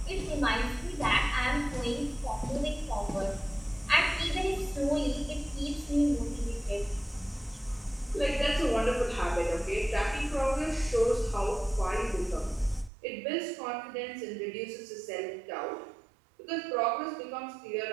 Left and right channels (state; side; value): drops out; left; at 12.9 s